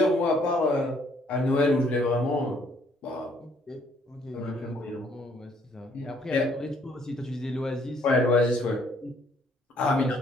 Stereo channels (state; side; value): normal; both; correlation 0.65